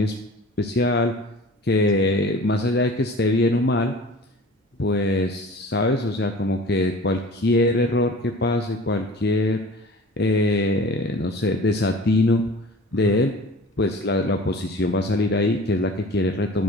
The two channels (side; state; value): both; normal; correlation 0.42